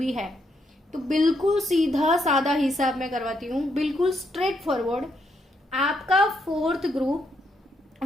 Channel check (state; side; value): normal; both; correlation 0.77